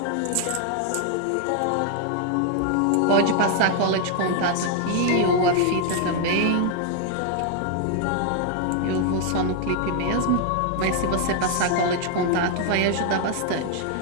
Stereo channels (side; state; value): both; different; correlation 0.00